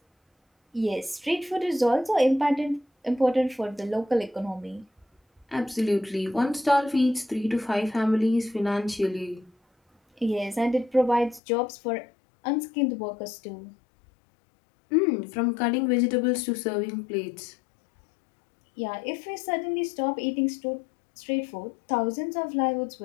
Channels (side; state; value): right; drops out; at 11.4 s